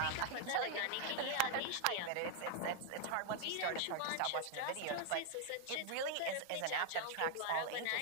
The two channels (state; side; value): different; both; correlation 0.00